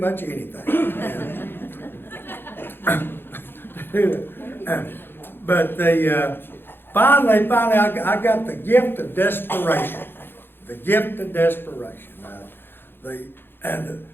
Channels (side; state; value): right; late; 0.10 ms